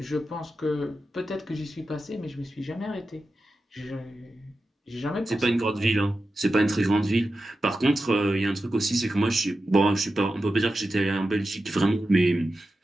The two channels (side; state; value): both; normal; correlation 0.91